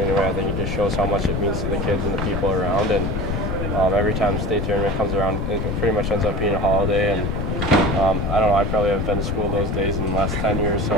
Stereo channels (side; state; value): left; noise; rumble, 1 dB below the sound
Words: I think it just shows how much it means to the kids and the people around. And every time the state tournament comes around, it pretty much ends up being a holiday. And I don't know, I probably haven't been to school those days in the last 10 years,